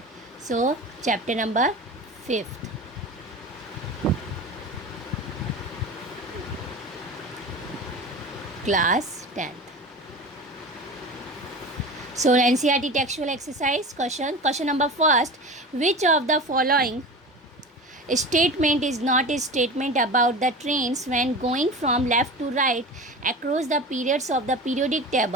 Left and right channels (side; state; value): both; normal; correlation 0.32